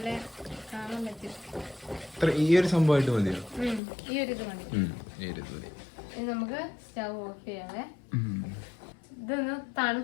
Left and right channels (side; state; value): right; drops out; at 3.8 s